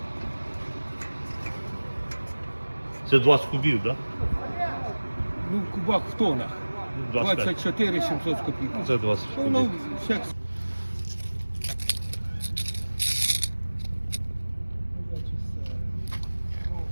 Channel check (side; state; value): both; inverted; correlation -1.00